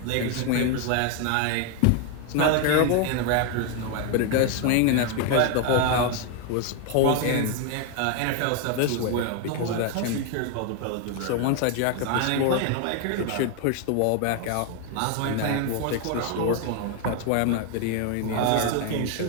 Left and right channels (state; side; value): different; both; correlation 0.01